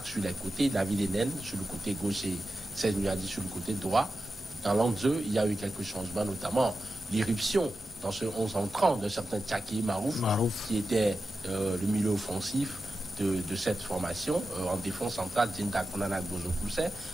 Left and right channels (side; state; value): both; normal; correlation 0.92